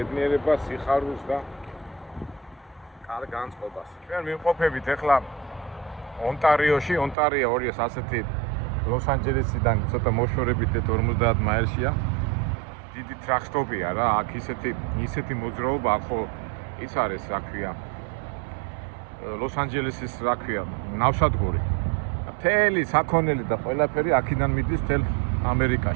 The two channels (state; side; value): drops out; left; at 7.2 s